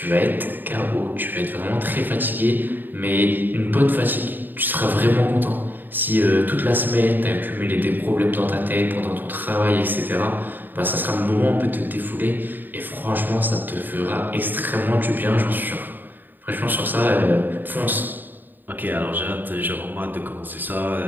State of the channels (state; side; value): late; left; 0.090 ms